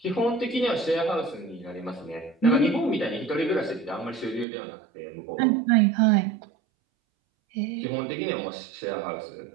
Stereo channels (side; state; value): left; drops out; at 4.5 s